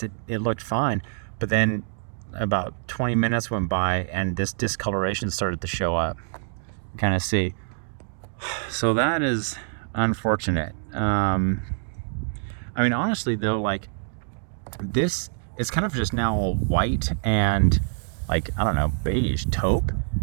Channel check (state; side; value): silent; left; digital silence